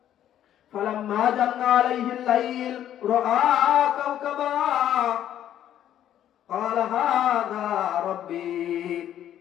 ফালাম্মা জান্না আলাইহিল লাইল রাআ কাওকাবা ক্বালা হাযা রাব্বী।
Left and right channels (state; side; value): quieter; right; 11.1 dB